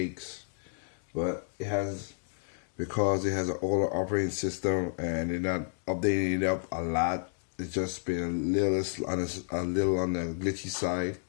But it has, because it has an older operating system and they're not updating it up a lot, it's just been a little on the glitchy side.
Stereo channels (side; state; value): right; silent; digital silence